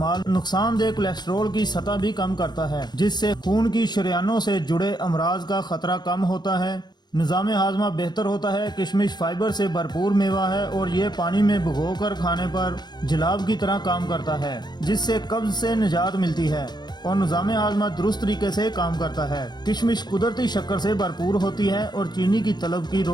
नुकसानदेह कोलेस्ट्रॉल की सतह भी कम करता है, जिससे खून की शरीयानों से जुड़े अमराज का खतरा कम होता है। निज़ाम हाजमा बेहतर होता है। किशमिश फाइबर से भरपूर मेवा है और ये पानी में भिगोकर खाने पर जलाब की तरह काम करता है, जिससे कब्ज से निजात मिलती है और निज़ाम हाजमा दुरुस्त तरीके से काम करता है। किशमिश कुदरती शक्कर से भरपूर होती है और चीनी की तलब की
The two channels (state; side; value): late; right; 0.21 ms